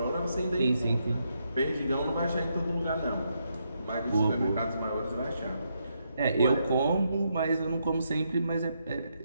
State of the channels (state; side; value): inverted; both; correlation -0.79